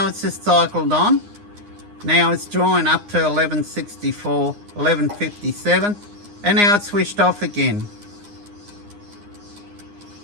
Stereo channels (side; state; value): left; late; 9.7 ms